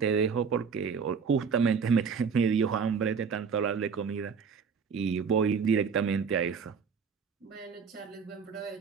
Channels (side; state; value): left; quieter; 6.0 dB